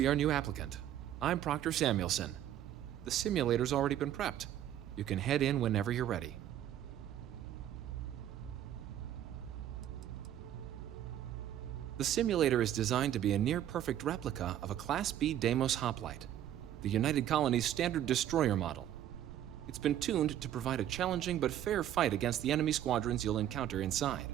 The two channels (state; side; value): quieter; left; 11.4 dB